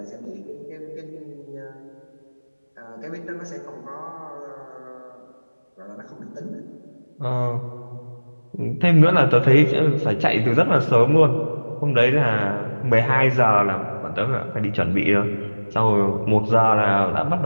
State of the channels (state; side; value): inverted; both; correlation -1.00